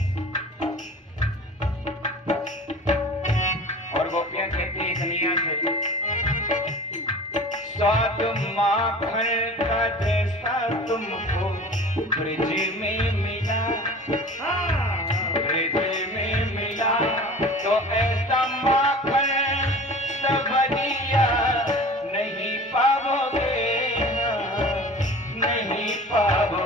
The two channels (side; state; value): both; normal; correlation 0.40